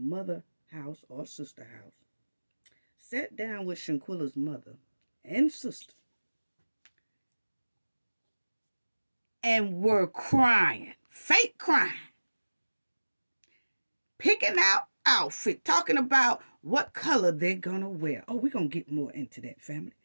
house or sister house, sat down with Shanquella's mother and sister, and were crying, fake crying, picking out outfit, talking about what color they're gonna wear. Oh, we're gonna get more into that, family.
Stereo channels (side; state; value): both; inverted; correlation -1.00